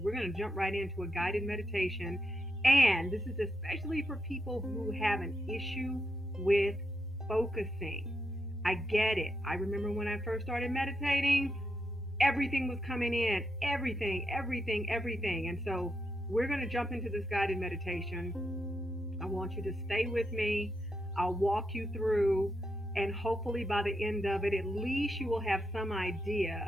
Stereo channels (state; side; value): normal; both; correlation 0.83